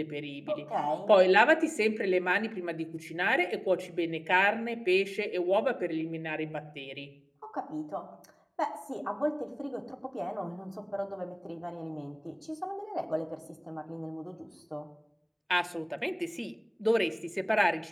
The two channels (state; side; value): identical; both; correlation 1.00